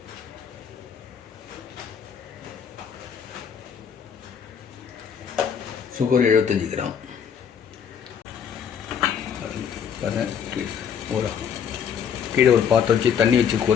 Sugar 75 gram. கீழே ஒரு பாத்திரம் வச்சு தண்ணி வச்சு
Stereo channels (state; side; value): quieter; right; 7.7 dB